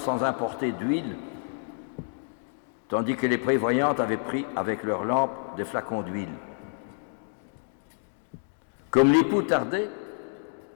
importer d'huile, tandis que les prévoyantes avaient pris avec leurs lampes des flacons d'huile. Comme l'époux tardait,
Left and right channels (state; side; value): silent; right; digital silence